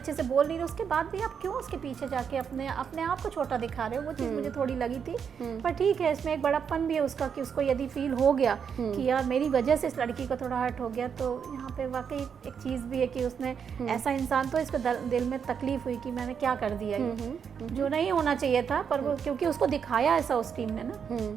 से बोल नहीं रहे, उसके बाद भी आप क्यों उसके पीछे जाके अपने आप को छोटा दिखा रहे हो, वो चीज़ मुझे थोड़ी लगी थी। पर ठीक है, इसमें एक बड़प्पन भी है उसका कि उसको यदि फील हो गया कि यार मेरी वजह से इस लड़की को थोड़ा हर्ट हो गया, तो यहाँ पे वाकई एक चीज़ भी है कि उसने ऐसा इंसान, तो इसको दिल में तकलीफ हुई कि मैंने क्या कर दिया, ये जो नहीं होना चाहिए था, पर वो क्योंकि उसको दिखाया ऐसा उस टीम ने ना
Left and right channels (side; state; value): left; quieter; 7.1 dB